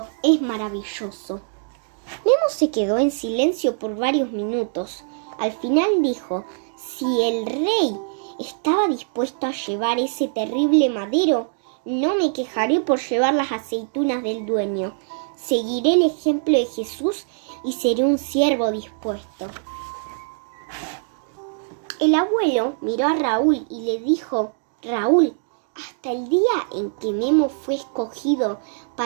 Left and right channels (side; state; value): left; silent; digital silence